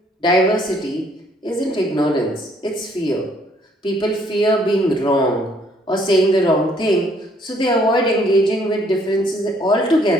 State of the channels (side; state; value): both; normal; correlation 0.65